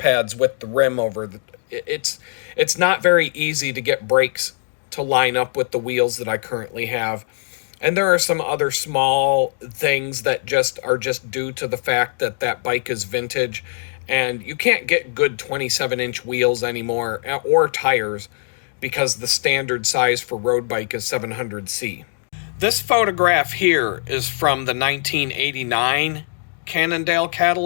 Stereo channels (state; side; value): silent; right; digital silence